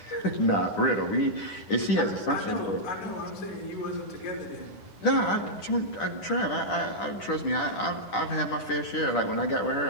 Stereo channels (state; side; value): late; right; 10 ms